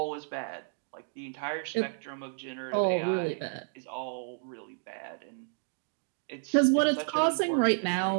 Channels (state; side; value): silent; left; digital silence